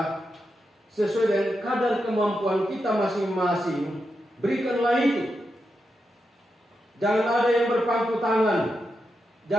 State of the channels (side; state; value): both; normal; correlation 0.86